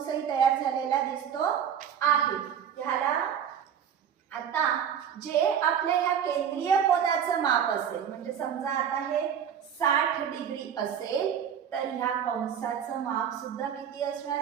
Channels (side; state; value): left; quieter; 8.5 dB